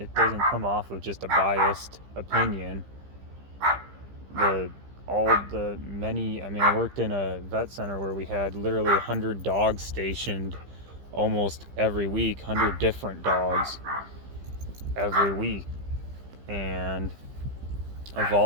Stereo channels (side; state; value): left; late; 15 ms